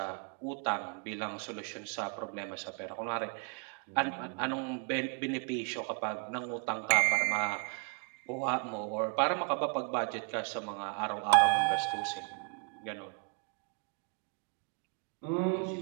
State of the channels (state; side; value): quieter; left; 38.8 dB